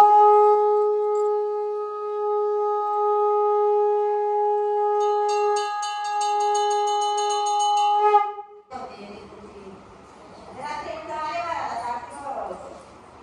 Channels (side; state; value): both; identical; correlation 1.00